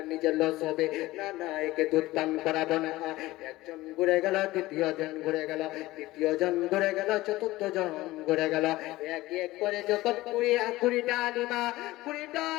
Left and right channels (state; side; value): quieter; right; 18.1 dB